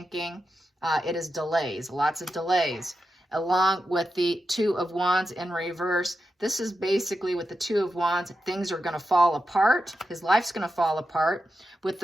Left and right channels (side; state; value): both; normal; correlation 0.89